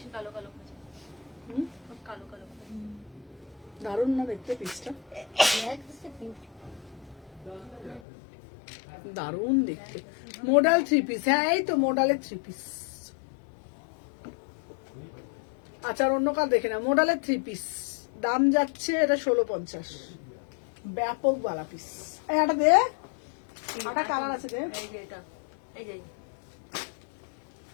কালো কালো খাচ্ছে, কালো কালো দারুণ না দেখতে পিসটা, দারুণ দেখতে। মোডাল থ্রি পিস, হ্যাঁ এই তো মোডালের থ্রি পিস। আচ্ছা আর অন্য কাল দেখে না, মোডালের থ্রি পিস দাম যাচ্ছে এটা 1650, ব্যাপক বালা পিস। এটা দে, এটা কালার আছে দে। এই যে এটা, এই যে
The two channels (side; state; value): right; drops out; at 8.0 s